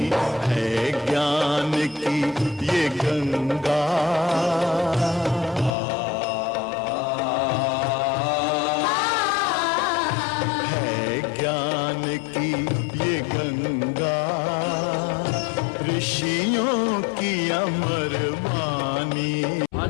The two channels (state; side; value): drops out; right; at 5.8 s